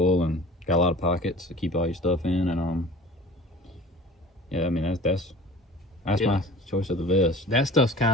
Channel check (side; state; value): both; normal; correlation 0.42